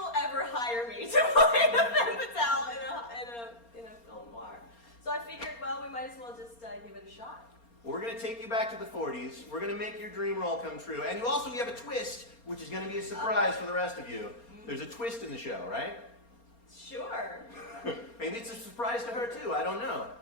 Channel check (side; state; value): right; late; 4.3 ms